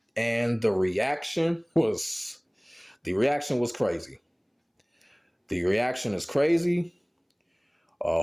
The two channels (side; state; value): both; identical; correlation 1.00